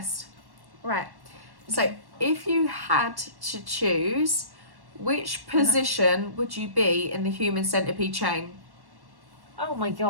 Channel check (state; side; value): late; left; 1.1 ms